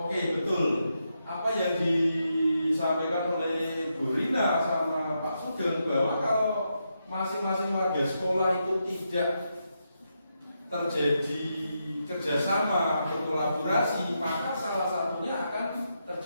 betul. Apa yang disampaikan oleh Bu Rina sama Pak Sugeng bahwa kalau masing-masing warga sekolah itu tidak terjadi kerjasama, berkolaborasi, maka salah satunya akan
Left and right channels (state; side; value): inverted; both; correlation -0.84